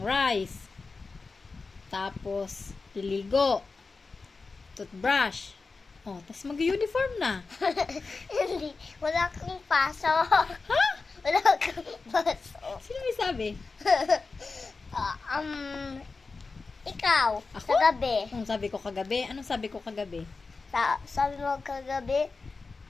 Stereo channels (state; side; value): quieter; right; 4.1 dB